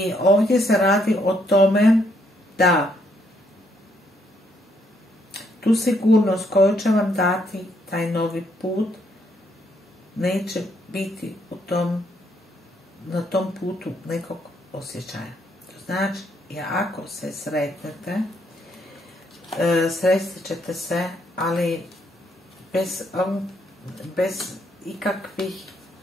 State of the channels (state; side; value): normal; both; correlation 0.73